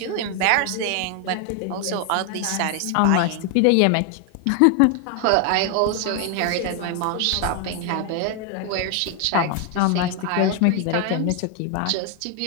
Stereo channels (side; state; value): both; different; correlation 0.00